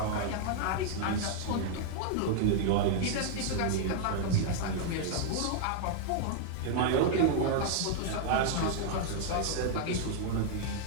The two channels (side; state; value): both; different; correlation 0.00